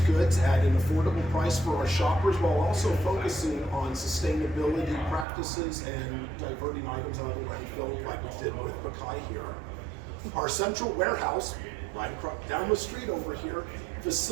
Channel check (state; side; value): drops out; left; at 5.2 s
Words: goods at an affordable price for our shoppers while also focusing on sustainability practices and diverting items out of the landfill like we did with Bakai here. Our central warehouse right across down the street over here,